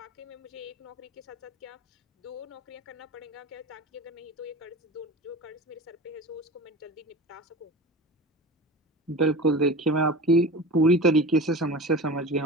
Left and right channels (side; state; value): both; normal; correlation 0.33